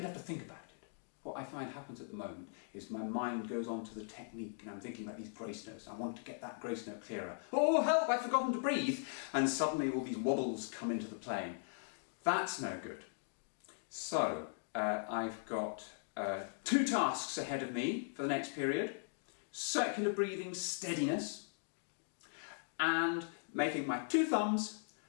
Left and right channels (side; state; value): right; silent; digital silence